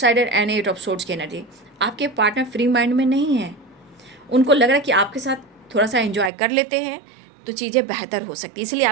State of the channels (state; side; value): drops out; left; at 6.3 s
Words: and 8 of swords की एनर्जी। आपके पार्टनर फ्री माइंड में नहीं है, उनको लग रहा है कि आपके साथ थोड़ा सा एंजॉय कर लेते हैं तो चीज़ें बेहतर हो सकती है, इसलिए